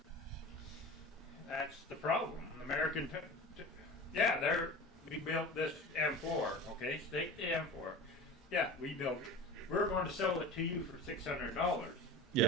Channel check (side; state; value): both; normal; correlation 0.34